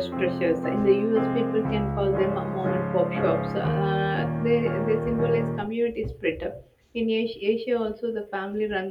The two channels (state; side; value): identical; both; correlation 1.00